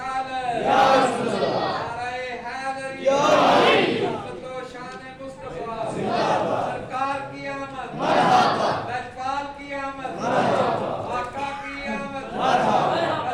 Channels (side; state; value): both; identical; correlation 1.00